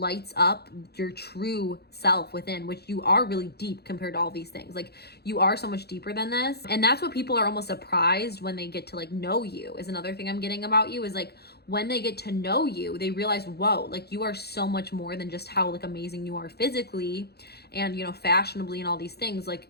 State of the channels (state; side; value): late; right; 0.47 ms